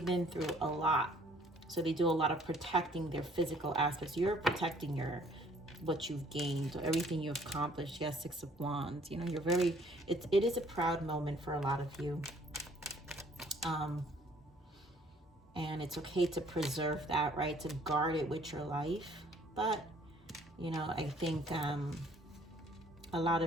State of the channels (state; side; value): normal; both; correlation 0.59